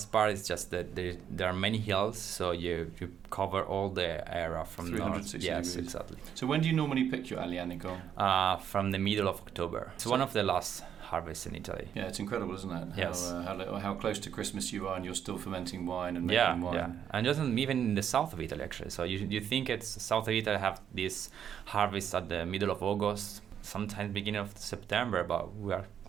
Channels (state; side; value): quieter; left; 8.9 dB